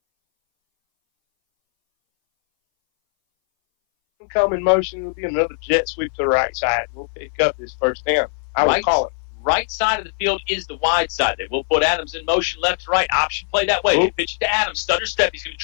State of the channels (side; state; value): right; silent; 62 dB below the other